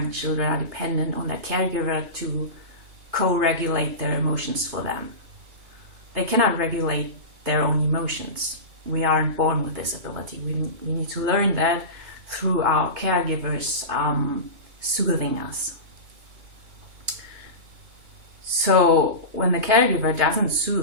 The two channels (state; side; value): late; left; 3.3 ms